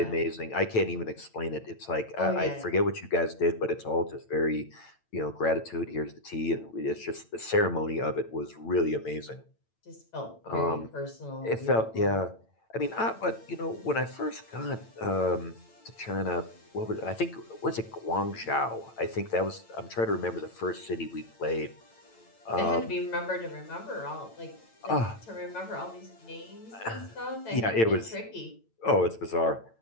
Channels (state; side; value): late; right; 8.9 ms